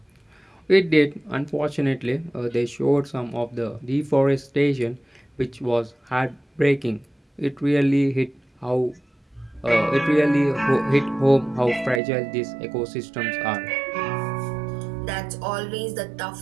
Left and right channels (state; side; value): drops out; left; at 12.0 s